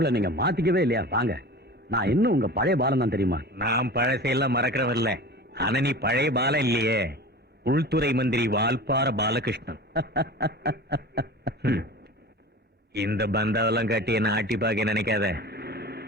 நீங்க மாத்திக்கவே இல்லையா? வாங்க. நான் இன்னும் உங்க பழைய பாலம் தான், தெரியுமா? நான் பழசையெல்லாம் மறக்கிறவன் இல்ல. ஆனா நீ பழைய பாலம் இல்லையே. உள்துறை மந்திரி வால்பார பாலகிருஷ்ணன். இந்த பந்தாவெல்லாம் கட்டி என்ன ஆட்டி பார்க்க நினைக்காத.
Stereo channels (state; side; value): normal; both; correlation 0.35